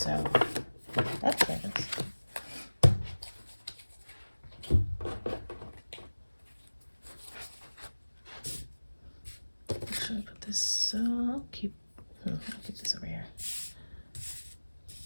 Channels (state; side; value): inverted; both; correlation -1.00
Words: that's nice. Should I put this? I'll keep this over here.